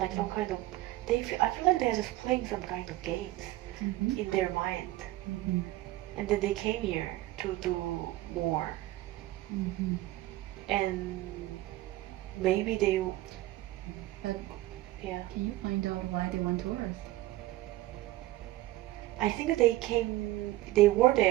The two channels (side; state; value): left; quieter; 16.9 dB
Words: some kind of. I feel like they're just playing some kind of games in their mind, and then they came here to do more, and maybe they. But Yeah. can you find out why they went to Earth? I think they were